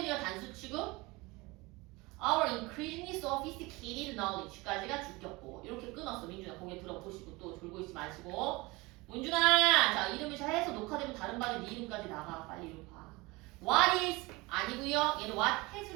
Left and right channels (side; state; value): left; quieter; 23.5 dB